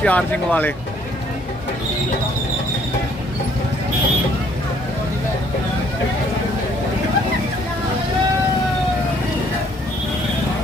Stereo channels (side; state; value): both; normal; correlation 0.63